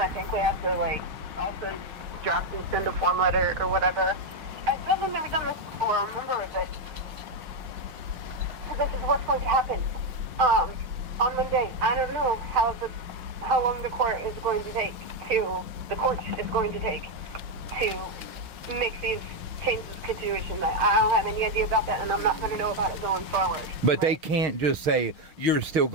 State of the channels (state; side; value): late; left; 6.4 ms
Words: think we have to, like, also draft and send a form letter or whatever. I still have never done this before, remember, but so this is what's going to happen. On Monday, I don't know how long the court is going to take to make these changes to situation. I don't have any idea about that, and I'm not going to know about it going forward. But right? they can't just say you're still